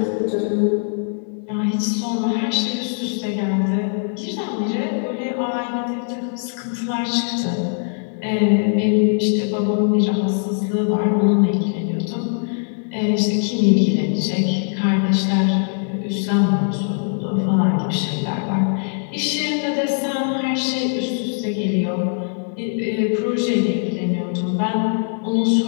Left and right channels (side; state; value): right; silent; 64 dB below the other